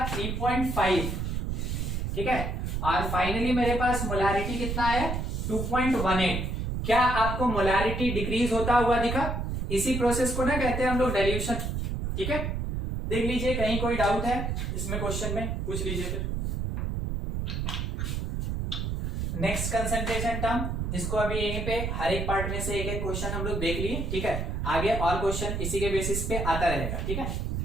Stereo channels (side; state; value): right; noise; rumble, 2 dB below the sound